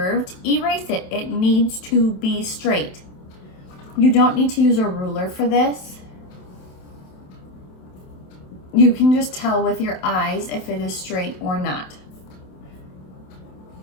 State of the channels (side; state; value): right; late; 27 ms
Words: erase it. It needs to be straight. You don't need to use a ruler for this. You can just tell with your eyes if it is straight or not.